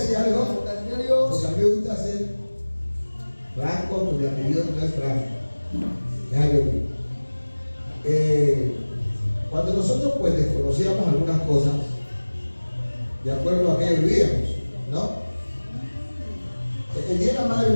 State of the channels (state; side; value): inverted; both; correlation -1.00